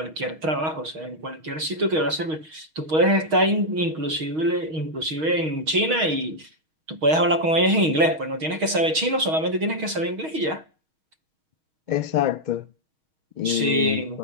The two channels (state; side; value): late; left; 6.3 ms